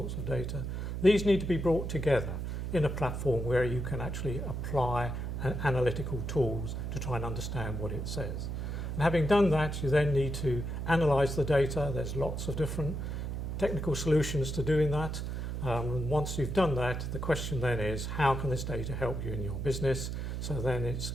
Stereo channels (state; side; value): noise; right; hum, 4 dB below the sound